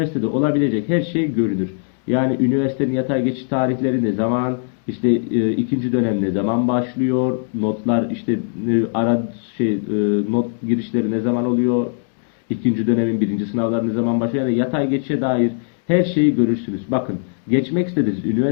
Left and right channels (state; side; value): silent; right; digital silence